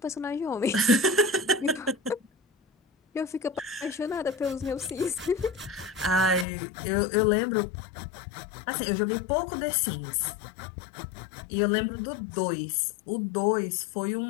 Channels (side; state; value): right; drops out; at 6.5 s